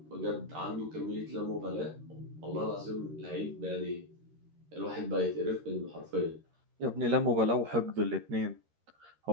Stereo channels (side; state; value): left; late; 13 ms